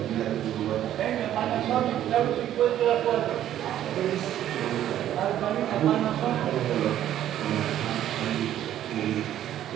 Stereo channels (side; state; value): left; quieter; 11.7 dB